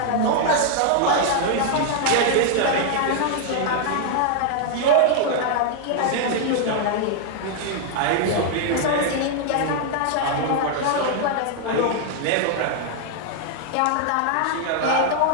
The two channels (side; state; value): both; different; correlation -0.01